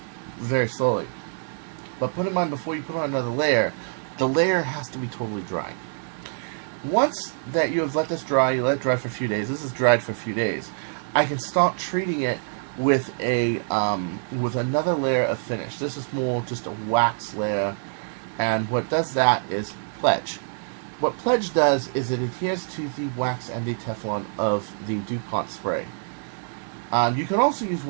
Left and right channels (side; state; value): left; silent; digital silence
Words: very slowly. But put in mind, before you put on another layer, the layer has to be totally dry. Once that you have let this dry, you let it dry for a few days. This is dried for a few days. I can start treating it with a with another layer of finish. This is more just a wax layer, and what does that is Pledge. What Pledge does is it adheres to the wax and the Teflon of the DuPont spray. You can also use